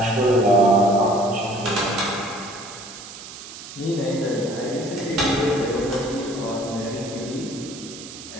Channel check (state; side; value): noise; right; hiss, 14 dB below the sound